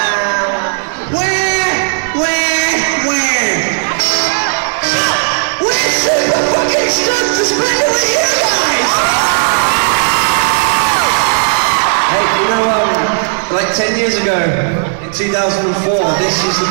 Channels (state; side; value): silent; left; digital silence